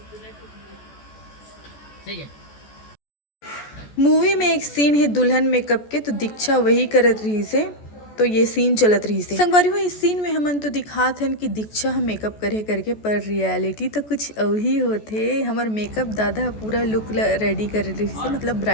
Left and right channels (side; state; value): right; late; 14 ms